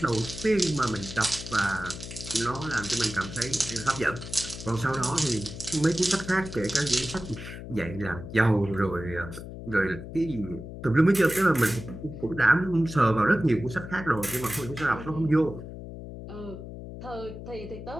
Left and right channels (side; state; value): left; noise; hum, 11 dB below the sound